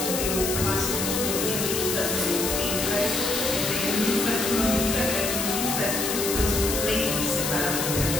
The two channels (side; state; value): left; noise; hiss, 2 dB below the sound